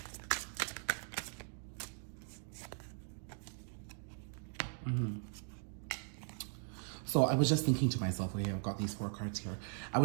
So I was just thinking to myself, okay, I've got these 4 cards here. I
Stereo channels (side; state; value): left; silent; 52 dB below the other